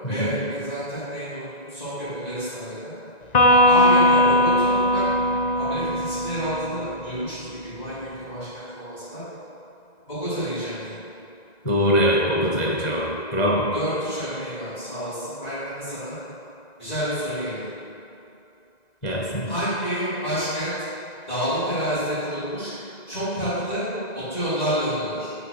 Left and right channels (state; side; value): late; right; 1.9 ms